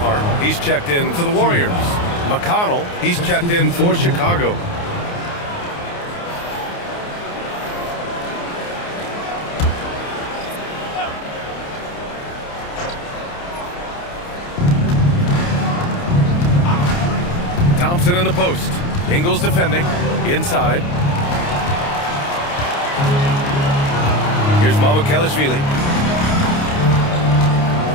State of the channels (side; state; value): right; late; 29 ms